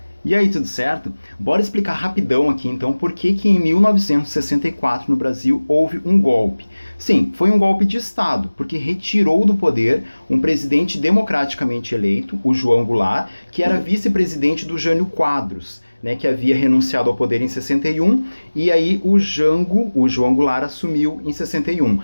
E aí, tudo certo? Bora explicar rapidão aqui então por que em 1964 no Brasil houve um golpe. Sim, foi um golpe de Estado, porque retirou do poder um presidente democraticamente eleito, o João Goulart, que era vice-presidente do Jânio Quadros, né, que havia renunciado ao poder em 61, e aí o João Goulart, assumiu em 61.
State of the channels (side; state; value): both; inverted; correlation -1.00